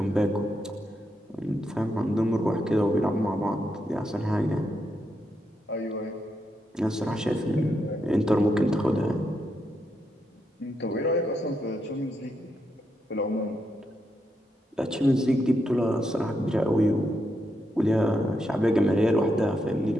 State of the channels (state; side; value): normal; both; correlation 0.82